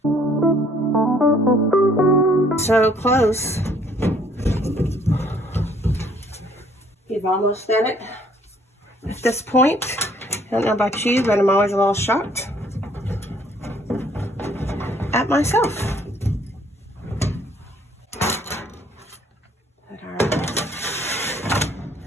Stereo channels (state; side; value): normal; both; correlation 0.62